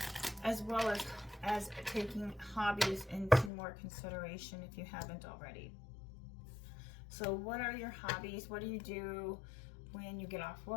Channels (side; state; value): right; drops out; at 3.5 s